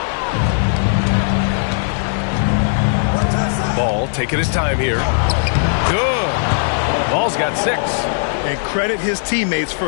Ball taking his time here. Good. Ball's got 6. And credit his teammates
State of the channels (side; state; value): right; silent; 62 dB below the other